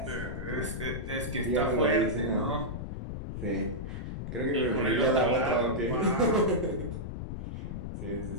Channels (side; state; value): left; noise; rumble, 6 dB below the sound